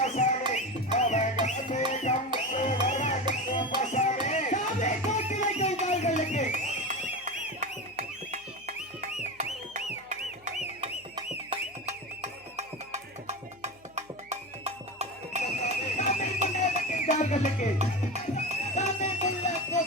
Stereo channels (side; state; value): left; noise; hum, 28 dB below the sound